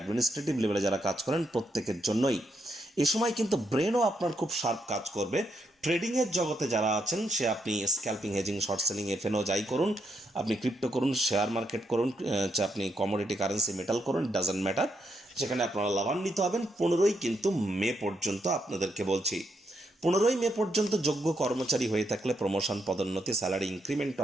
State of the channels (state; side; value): normal; both; correlation 0.79